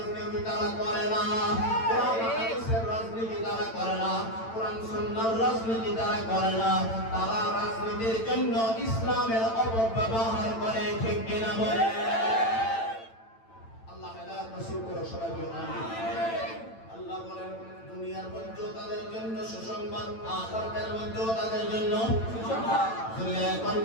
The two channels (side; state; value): right; late; 8.9 ms